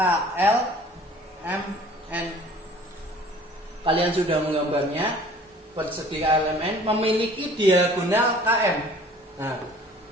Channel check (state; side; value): normal; both; correlation 0.50